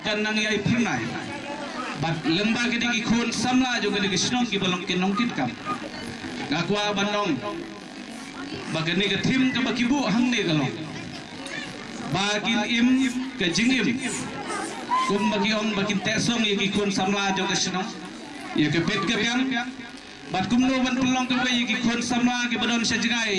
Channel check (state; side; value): identical; both; correlation 1.00